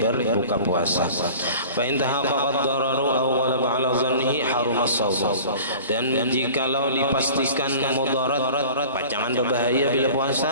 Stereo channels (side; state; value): both; inverted; correlation -0.42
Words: puasa. Fa in tahaqqaqad dararu aw ghalaba 'ala dhannihi haruma as-shawm, dan jikalau dipastikan mudarat, pacangan berbahaya bila puasa,